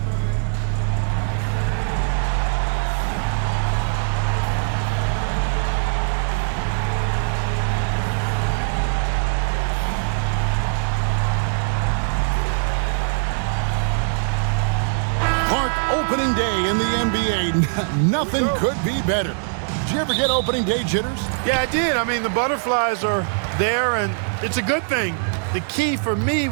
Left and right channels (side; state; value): left; silent; digital silence